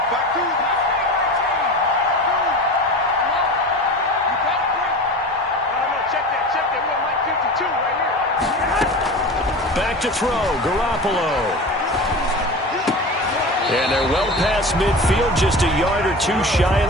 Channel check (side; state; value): both; normal; correlation 0.32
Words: Back to throw, Garoppolo. And they're well past midfield, just a yard or two shy of